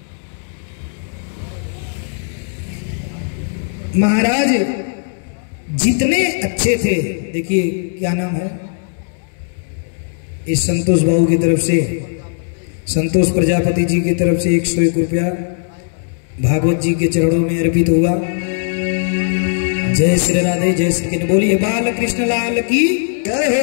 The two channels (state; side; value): silent; right; digital silence